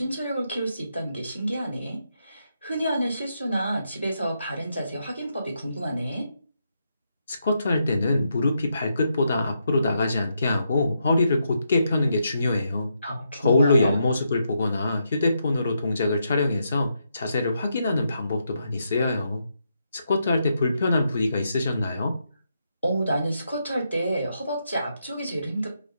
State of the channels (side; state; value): both; inverted; correlation -0.80